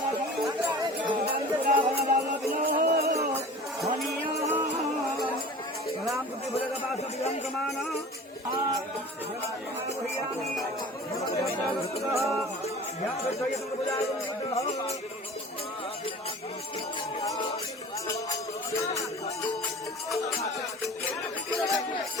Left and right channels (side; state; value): both; normal; correlation 0.40